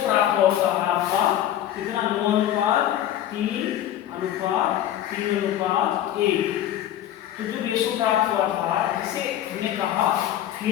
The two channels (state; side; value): quieter; right; 11.8 dB